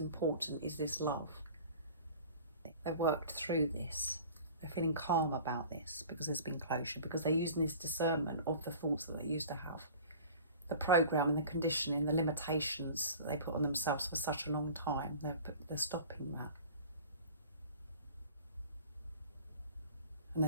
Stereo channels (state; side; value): inverted; both; correlation -0.43